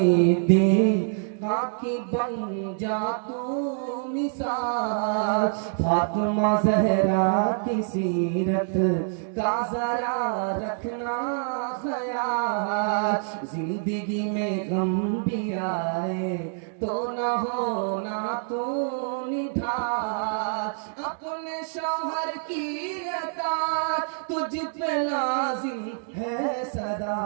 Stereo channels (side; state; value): left; silent; digital silence